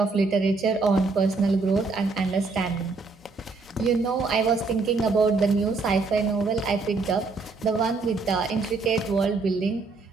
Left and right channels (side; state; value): left; quieter; 4.0 dB